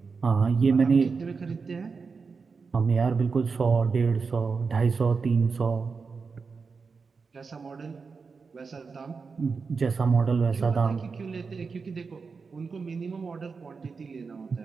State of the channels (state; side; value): quieter; left; 4.9 dB